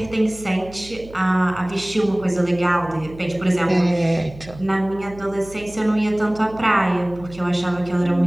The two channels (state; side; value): noise; right; hum, 18 dB below the sound